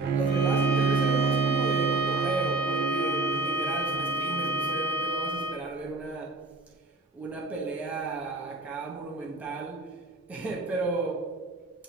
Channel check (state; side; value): quieter; left; 3.2 dB